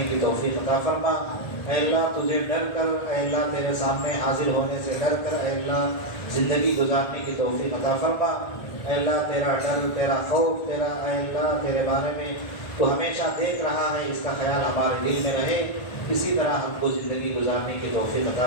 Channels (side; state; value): right; late; 1.3 ms